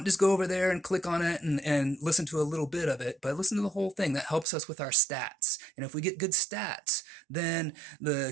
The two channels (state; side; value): drops out; left; at 4.5 s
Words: just go over there and click on it and listen to a little bit of it, but listen to the whole thing. That helps us with our stats. And if we get good stats, then the